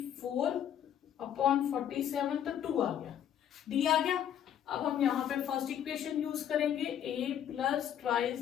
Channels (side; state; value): right; quieter; 9.8 dB